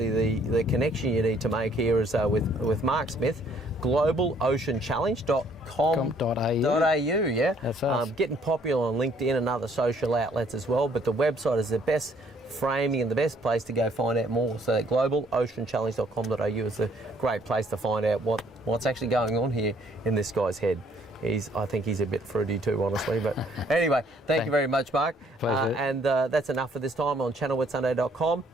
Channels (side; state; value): both; normal; correlation 0.63